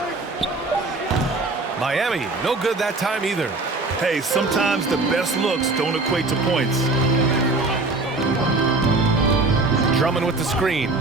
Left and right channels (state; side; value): quieter; left; 3.3 dB